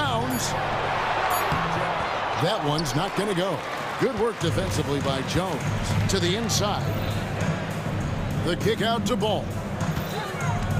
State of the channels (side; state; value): both; identical; correlation 1.00